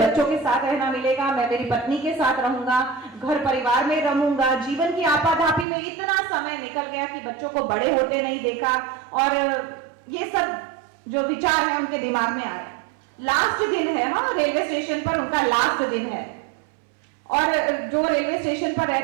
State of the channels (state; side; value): drops out; left; at 5.7 s